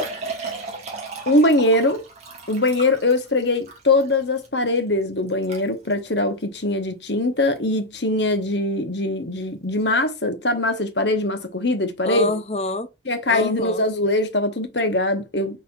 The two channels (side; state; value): both; normal; correlation 0.02